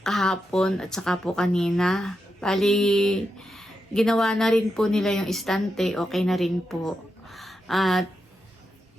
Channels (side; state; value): both; normal; correlation 0.86